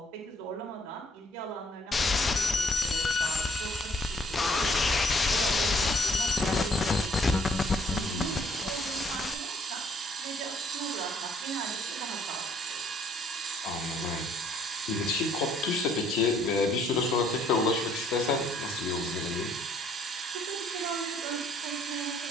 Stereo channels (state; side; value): normal; both; correlation 0.64